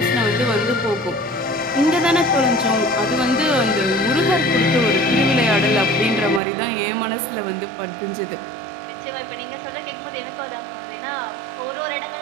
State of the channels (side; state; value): left; drops out; at 6.4 s